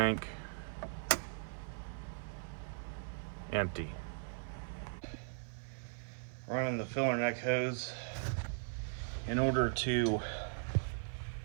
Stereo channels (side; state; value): left; silent; 52 dB below the other